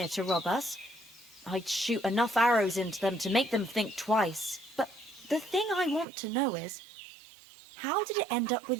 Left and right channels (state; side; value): drops out; left; at 6.1 s